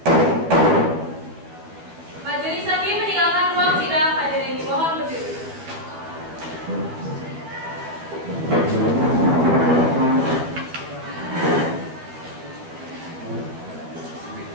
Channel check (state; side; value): late; left; 12 ms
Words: Majelis hakim meninggalkan ruang sidang. Hadirin mohon berdiri.